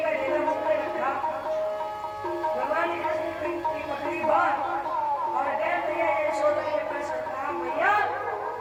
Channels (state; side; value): identical; both; correlation 1.00